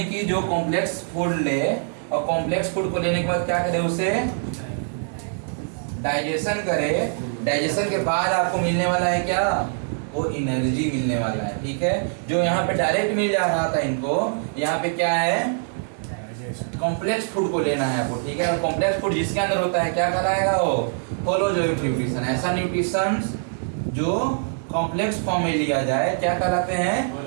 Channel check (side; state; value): left; silent; digital silence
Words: कि जो कॉम्प्लेक्स फूड ले, और कॉम्प्लेक्स फूड को लेने के बाद क्या करे? उसे डाइजेशन करे। डाइजेशन के बाद आपको मिलने वाला है क्या? वो एनर्जी मिलने वाला है, ठीक है। जो यहाँ पे डायरेक्ट मिल जा रहा था इनको, यहाँ पे क्या है? कॉम्प्लेक्स फूड को लेना है आपको, ठीक है। और कॉम्प्लेक्स फूड जिसके अंदर होता है क्या कहलाएगा? वो होलोजोइक न्यूट्रिशन। ऐसा न्यूट्रिशन जो कॉम्प्लेक्स फॉर्म में लिया जाए क्या कहलाते हैं?